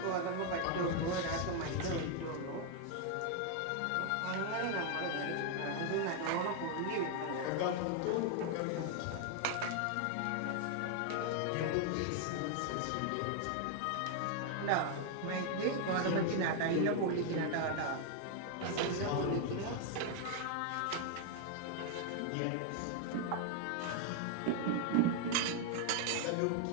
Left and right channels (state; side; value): different; both; correlation 0.00